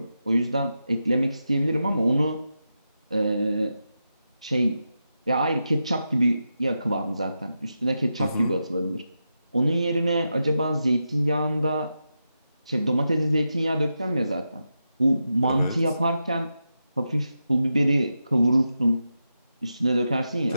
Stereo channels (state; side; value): inverted; both; correlation -0.88